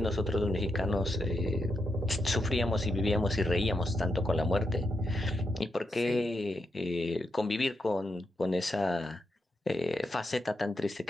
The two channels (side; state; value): both; normal; correlation 0.84